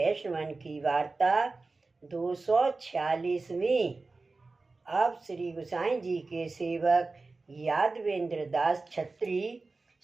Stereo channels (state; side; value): quieter; left; 3.7 dB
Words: की वार्ता 246वीं। अब श्री गोसाई जी के सेवक यादवेंद्र दास छत्री